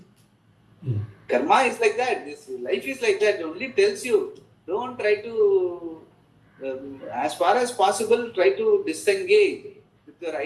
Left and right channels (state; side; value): identical; both; correlation 1.00